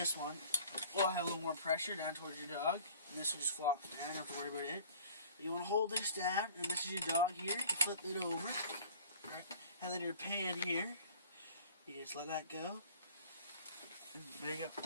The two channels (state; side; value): inverted; both; correlation -0.49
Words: one will have a little more pressure down towards your dog, and this will just flop down. You don't have to worry about it. You want to hold this down, and this is your dog here. You flip it over, right? And then your pan here, you just let that go. And there you